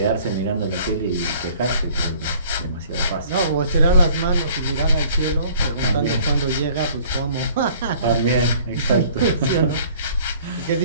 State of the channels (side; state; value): both; inverted; correlation -0.53